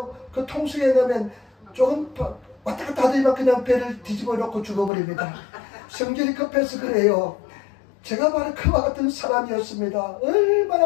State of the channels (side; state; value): right; drops out; at 4.9 s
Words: 그 통수에 넣으면 조금 왔다 갔다 하더니만 그냥 배를 뒤집어 놓고 죽어버립니다. 성질이 급해서 그래요. 제가 바로 그와 같은 사람이었습니다.